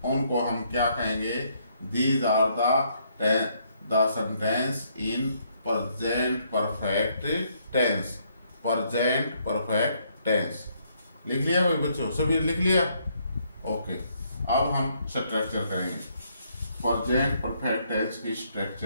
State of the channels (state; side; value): inverted; both; correlation -0.71